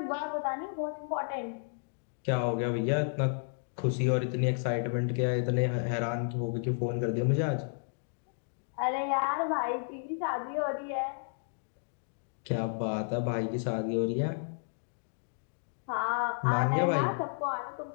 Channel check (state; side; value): silent; right; digital silence